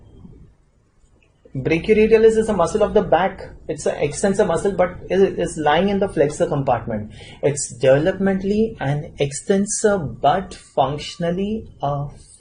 Brachioradialis is a muscle of the back. It's an extensor muscle, but it is lying in the flexor compartment. It's developmentally an extensor, but functionally a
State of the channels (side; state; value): both; identical; correlation 1.00